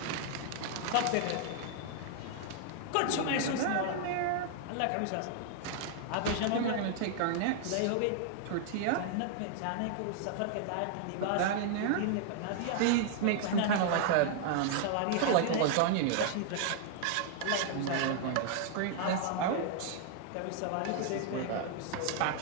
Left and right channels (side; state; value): both; different; correlation 0.00